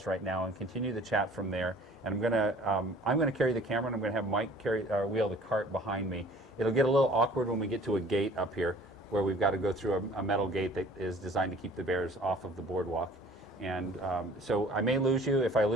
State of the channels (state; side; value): normal; both; correlation 0.50